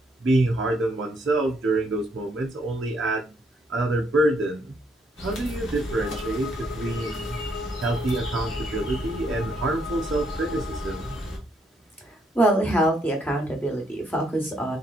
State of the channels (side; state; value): both; normal; correlation 0.72